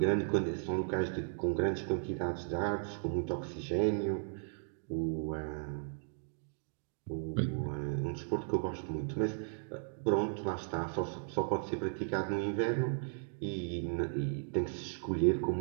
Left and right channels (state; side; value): silent; left; digital silence